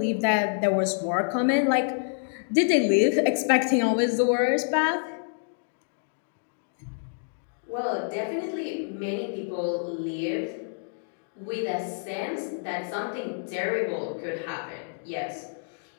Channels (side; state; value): right; silent; digital silence